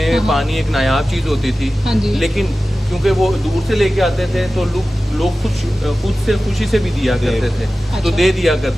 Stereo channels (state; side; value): normal; both; correlation 0.95